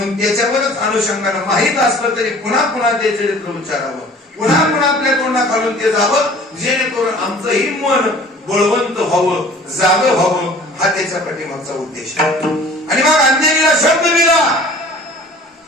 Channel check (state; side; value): normal; both; correlation 0.48